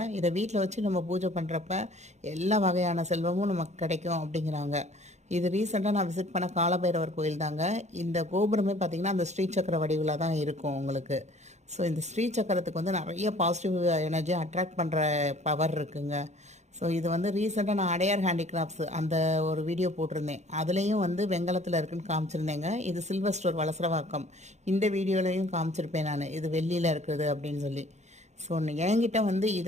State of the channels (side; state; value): left; late; 0.33 ms